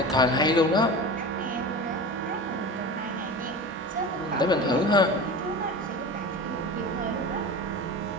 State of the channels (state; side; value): normal; both; correlation 0.31